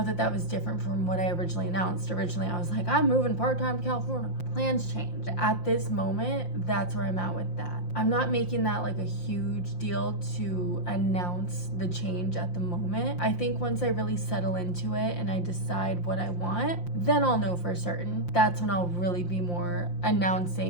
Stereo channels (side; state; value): right; late; 5.7 ms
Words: that that was different from what I originally announced. Originally, I was like, I'm moving part-time to California. Plans changed. At this moment, that's where I'm at with that. I'm not making that like a huge deal to announce the change at the moment. I think once I really settle into it and I decide what I want, then I'll know for certain. That's when I'll really be more